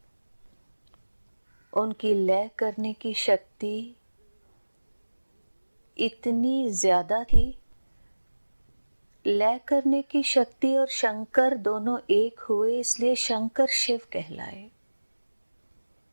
उनकी लय करने की शक्ति इतनी ज्यादा थी। लय करने की शक्ति और शंकर दोनों एक हुए, इसलिए शंकर शिव कहलाए।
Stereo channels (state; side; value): inverted; both; correlation -1.00